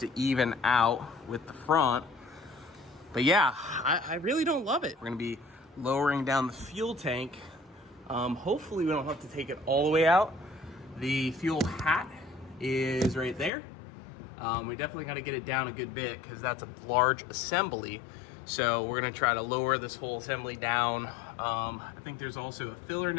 even out with the front. But yeah, I really don't love it. We're gonna be lowering down the fuel tank. Hopefully we don't have to take it all the way out. The fuel hat is right there. We definitely gotta get it down a good bit because that's a large assembly. So we're gonna try to lower this whole assembly down. I think there's also a filler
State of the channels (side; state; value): right; drops out; at 13.5 s